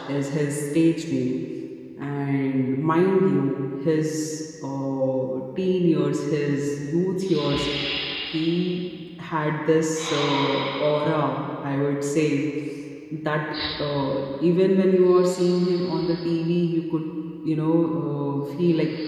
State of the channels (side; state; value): both; identical; correlation 1.00